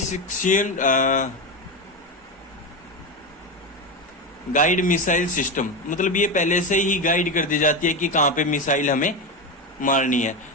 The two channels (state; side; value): normal; both; correlation 0.16